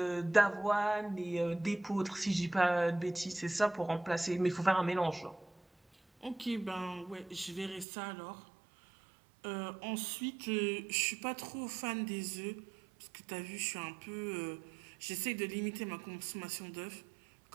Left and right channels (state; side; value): drops out; left; at 7.9 s